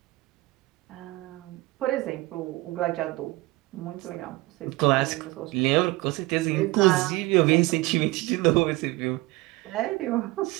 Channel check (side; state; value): left; quieter; 20.8 dB